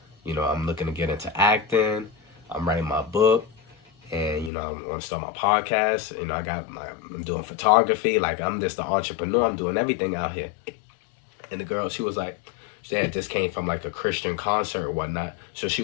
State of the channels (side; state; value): right; drops out; at 4.5 s